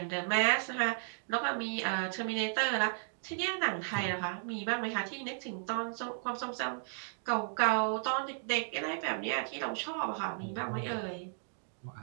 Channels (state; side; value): silent; left; digital silence